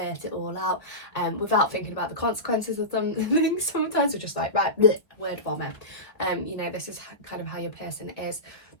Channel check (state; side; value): late; right; 1.5 ms